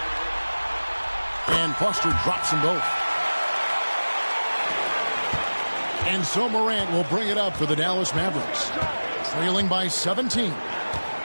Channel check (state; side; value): inverted; both; correlation -1.00